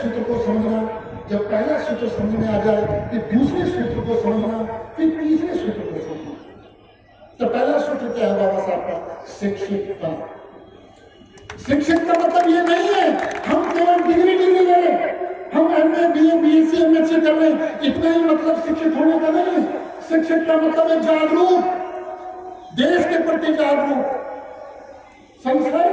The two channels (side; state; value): both; identical; correlation 1.00